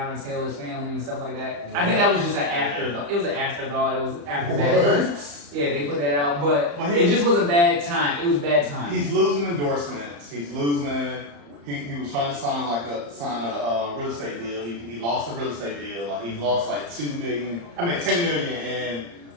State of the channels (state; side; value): late; left; 35 ms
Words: and Taylor's family and stuff like that. I think that was just an afterthought. It was an afterthought. It was after that. Yeah, they put that out, but it just was a bad time. It was bad time. He's losing endorsements. He's losing. He was trying to sign a real estate deal. He lost a real estate deal. Like he lost like 10 million in